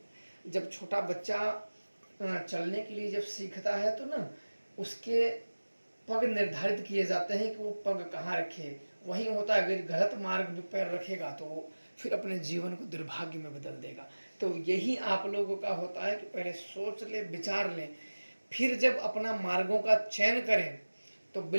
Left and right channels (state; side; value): inverted; both; correlation -1.00